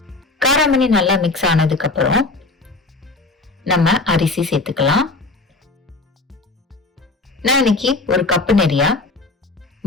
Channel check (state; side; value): quieter; right; 3.3 dB